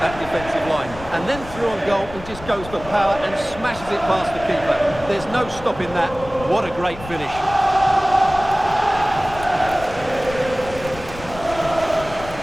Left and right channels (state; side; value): noise; left; rumble, 14 dB below the sound